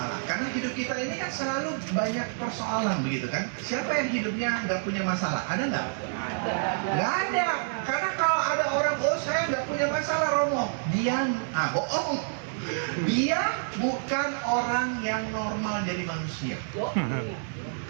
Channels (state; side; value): silent; left; 59 dB below the other